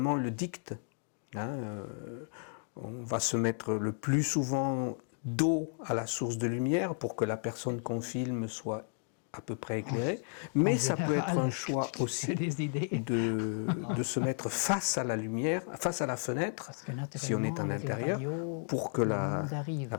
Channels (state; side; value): silent; right; 56 dB below the other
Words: le dicte. On va se mettre le plus souvent dos à la source de lumière pour que la personne qu'on filme soit à peu près éclairée, mais ça peut être un choix aussi de se mettre face à la lumière, face à la fenêtre, si on est en intérieur, pour que la